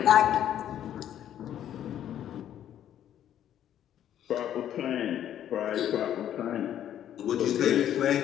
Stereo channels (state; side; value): quieter; right; 10.8 dB